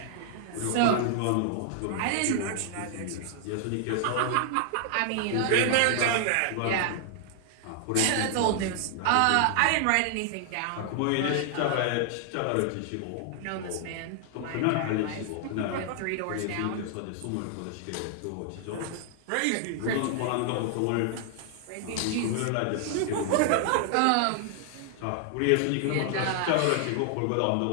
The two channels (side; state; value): both; different; correlation 0.00